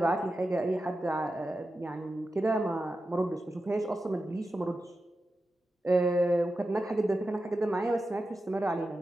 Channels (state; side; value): normal; both; correlation 0.91